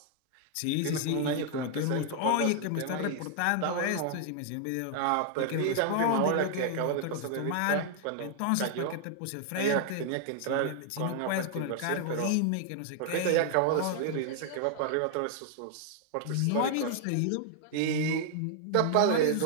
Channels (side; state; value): both; different; correlation 0.00